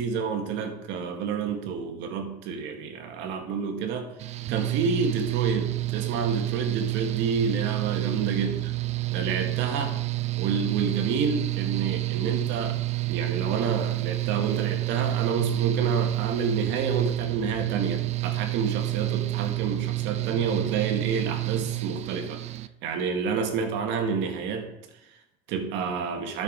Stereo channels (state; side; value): quieter; left; 8.1 dB